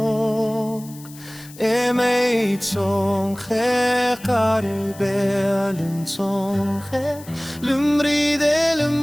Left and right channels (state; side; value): noise; left; hiss, 20 dB below the sound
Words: אמי צונחה קרבה לצונחה למריד